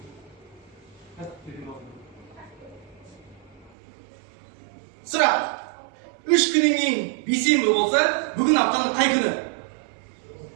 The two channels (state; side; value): drops out; left; at 3.7 s